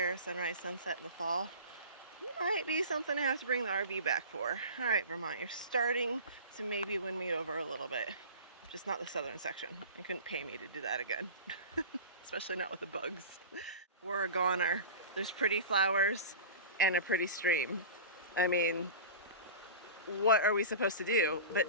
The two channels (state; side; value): inverted; both; correlation -0.34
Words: sunrise, sunset in the fall. Might be something I have to bring the RV back for. All right, Vermont, you're starting to maybe win me over a little bit. Just not the southern section. You couldn't pay me to do that again. Especially not with the bugs. We're a goner. There's pretty flowers and a pretty stream. I mean, what are we supposed to do